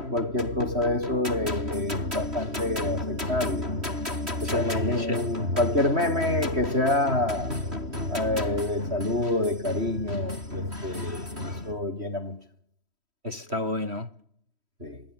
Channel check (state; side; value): late; left; 3.1 ms